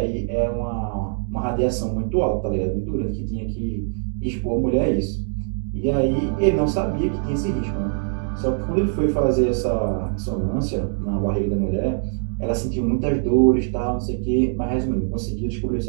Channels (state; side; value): silent; left; 64 dB below the other